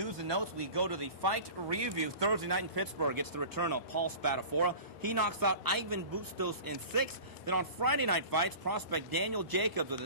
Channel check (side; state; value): right; late; 1.2 ms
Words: and Notes. We go to the fight review. Thursday night in Pittsburgh, it's the return of Paul Spadafora. He knocks out Ivan Bustos in 6. Then on Friday night fights, prospect Daniel Jacobs with